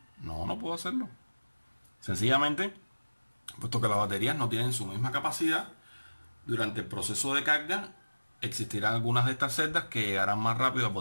No, no puedo hacerlo. Sencillamente, puesto que las baterías no tienen su misma capacidad, durante el proceso de carga existirán algunas de estas celdas que llegarán más rápido al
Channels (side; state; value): both; inverted; correlation -1.00